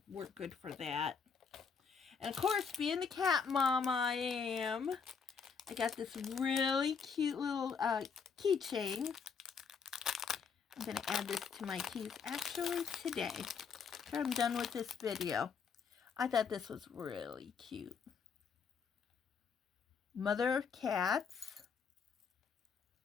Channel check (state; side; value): quieter; right; 6.0 dB